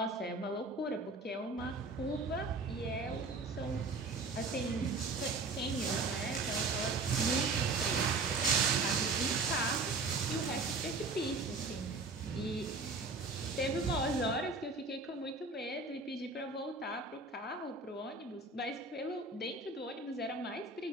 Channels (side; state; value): left; quieter; 3.6 dB